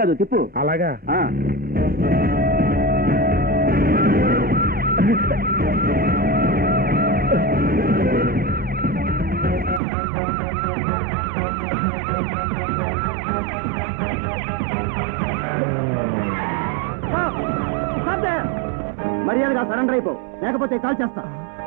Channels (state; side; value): drops out; left; at 9.8 s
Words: కాదు తిప్పు. అలాగా మర్యాదగా సరెండర్ అయిపో, లేకపోతే కాల్ చేస్తా.